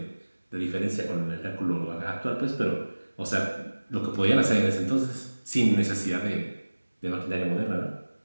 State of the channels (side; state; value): both; inverted; correlation -1.00